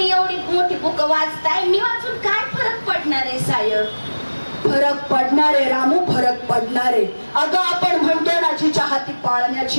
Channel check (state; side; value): inverted; both; correlation -1.00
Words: एवढी मोठी बुक वाचताय, मी वाचून काय फरक पडणार आहे साहेब? फरक पडणारे रामू, फरक पडणारे. अगं आपण म्हणतो ना जिच्या हाती